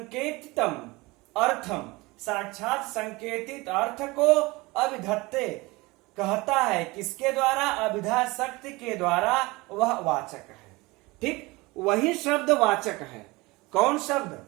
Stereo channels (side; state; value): left; quieter; 22.9 dB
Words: अर्थम, साक्षात संकेतित अर्थ को अभिधत्ते कहता है। किसके द्वारा? अभिधा शक्ति के द्वारा, वह वाचक है। ठीक। वही शब्द वाचक है। कौन शब्द?